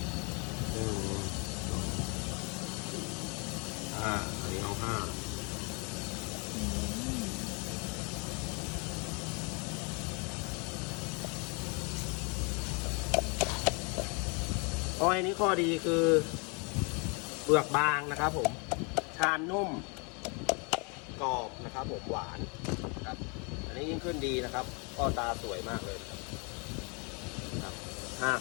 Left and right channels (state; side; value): quieter; right; 33.0 dB